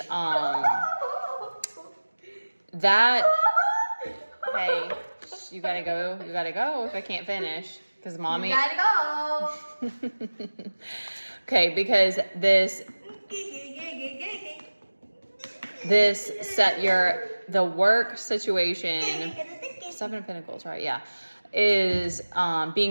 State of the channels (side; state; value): both; inverted; correlation -1.00